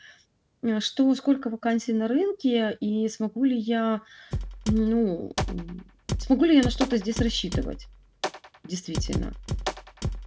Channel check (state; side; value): identical; both; correlation 1.00